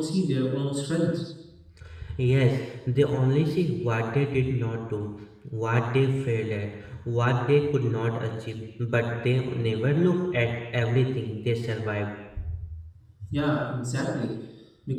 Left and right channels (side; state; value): both; identical; correlation 1.00